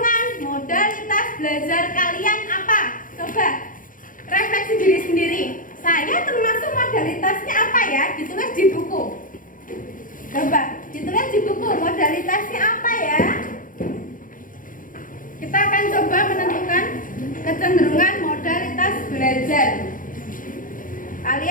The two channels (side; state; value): right; late; 0.39 ms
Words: modalitas belajar kalian apa? Coba refleksi diri sendiri. Saya termasuk modalitasnya apa ya? Ditulis di buku. Coba ditulis di buku modalitasnya apa ya? Kita akan coba menentukan kecenderungan modalitas belajar.